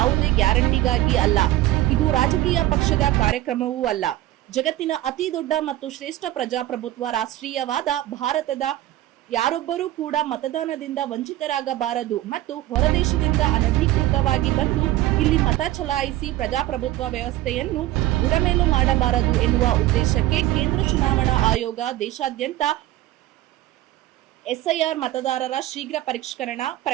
ಗ್ಯಾರಂಟಿಗಾಗಿ ಅಲ್ಲ, ಇದು ರಾಜಕೀಯ ಪಕ್ಷದ ಕಾರ್ಯಕ್ರಮವೂ ಅಲ್ಲ. ಜಗತ್ತಿನ ಅತಿ ದೊಡ್ಡ ಮತ್ತು ಶ್ರೇಷ್ಠ ಪ್ರಜಾಪ್ರಭುತ್ವ ರಾಷ್ಟ್ರೀಯವಾದ ಭಾರತದ ಯಾರೊಬ್ಬರೂ ಕೂಡ ಮತದಾನದಿಂದ ವಂಚಿತರಾಗಬಾರದು ಮತ್ತು ಹೊರದೇಶದಿಂದ ಅನಧಿಕೃತವಾಗಿ ಬಂದು ಇಲ್ಲಿ ಮತ ಚಲಾಯಿಸಿ ಪ್ರಜಾಪ್ರಭುತ್ವ ವ್ಯವಸ್ಥೆಯನ್ನು ಬುಡಮೇಲು ಮಾಡಬಾರದು ಎನ್ನುವ ಉದ್ದೇಶಕ್ಕೆ ಕೇಂದ್ರ ಚುನಾವಣಾ ಆಯೋಗ ದೇಶಾದ್ಯಂತ ಎಸ್ಐಆರ್ ಮತದಾರರ ಶೀಘ್ರ ಪರಿಷ್ಕರಣಾ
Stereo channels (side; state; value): left; quieter; 15.2 dB